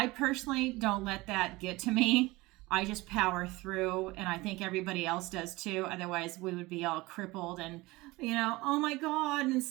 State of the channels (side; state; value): left; quieter; 21.3 dB